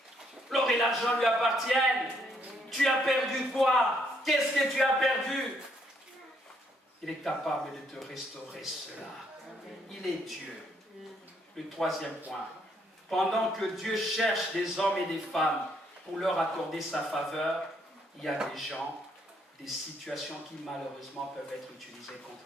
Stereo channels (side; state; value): both; normal; correlation 0.71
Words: L'or et l'argent lui appartiennent. Tu as perdu quoi? Qu'est-ce que tu as perdu? Il est capable de te restaurer cela. Il est Dieu. Le troisième point. Pendant que Dieu cherche des hommes et des femmes pour leur accorder sa faveur, il y a des gens, des situations qui malheureusement peuvent être utilisées contre